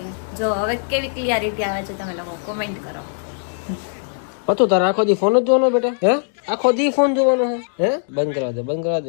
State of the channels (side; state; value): right; silent; digital silence